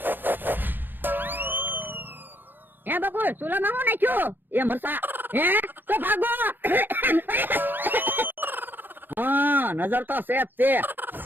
હે બકુલ સુલામાં હું નાખ્યું? એ મરસા. હે તો ભાગો. હા નજર તો સેફ છે.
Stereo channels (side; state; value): left; late; 0.093 ms